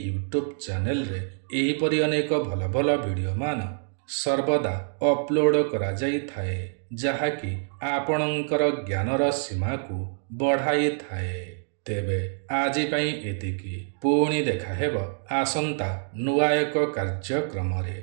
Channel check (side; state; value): left; silent; digital silence